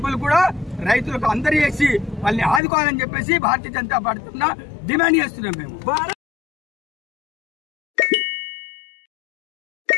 కూడా రైతులకు అందరూ చేసి వాళ్ళని ఆదుకోవాలని చెప్పేసి భారతీయ జనతా పార్టీ డిమాండ్ చేస్తున్నాం మేము.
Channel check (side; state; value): right; drops out; at 2.6 s